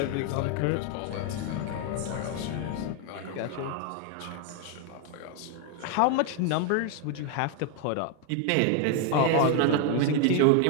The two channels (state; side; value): different; both; correlation 0.00